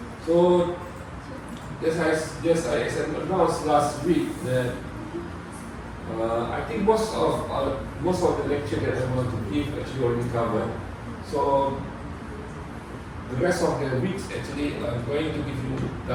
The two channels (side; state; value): both; identical; correlation 1.00